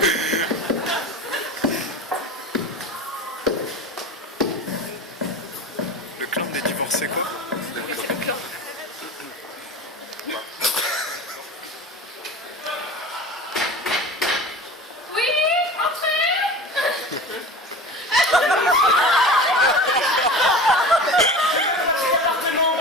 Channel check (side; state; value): both; normal; correlation 0.34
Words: Le clan des divorcés quoi? Oui, c'est le clan. Oui, entrez.